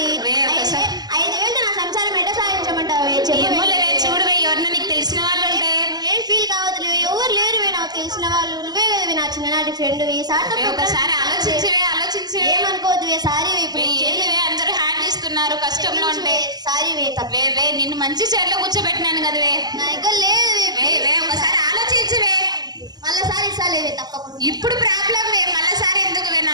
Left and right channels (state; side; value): late; left; 0.20 ms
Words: వే, ఒకసారి- 5,000 నా సంసారం ఎట్ట సాధించమంటావే ఏమో లేవే చూడువే ఎవరన్నా నీకు తెలిసిన వాళ్ళు ఉంటే ఏం ఫీల్ కావద్దు ఎవరు లేరువే నాకు తెలిసిన వాళ్ళు నువ్వే కదవే నా చిన్ననాటి ఫ్రెండ్ ఈ వే, ఒకసారి ఆలోచించవే ఏమనుకోవద్దువే సారీ ఇప్పుడు ఏంటివే అందరూ హ్యాండ్ ఇస్తున్నారు కష్టంలో ఉంటే సారీ వే వే నిన్ను మంచి చైర్లో కూర్చోబెట్టినాను కదవే నా దగ్గర లేదు వే ఒకసారి ఆలోచించవే మళ్ళీ సారి ఇస్తాలేవే తప్పకుండా ఇప్పుడు ప్రాబ్లం వే మళ్ళీసారి ఎందుకు వే